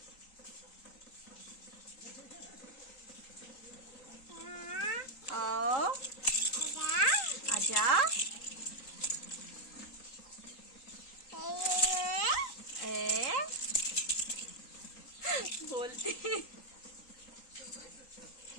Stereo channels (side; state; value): right; late; 3.8 ms